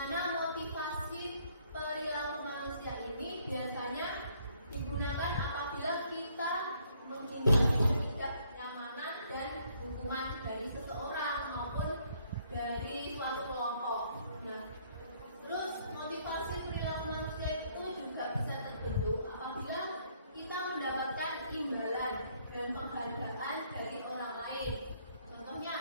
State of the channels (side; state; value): both; inverted; correlation -0.66